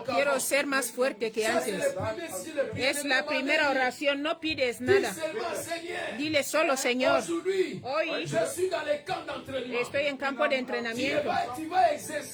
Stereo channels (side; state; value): both; identical; correlation 1.00